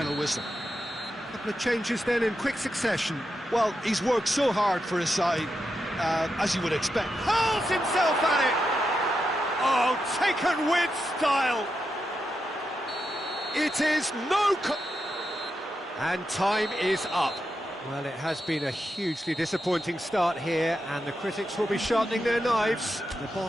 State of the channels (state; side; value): normal; both; correlation 0.86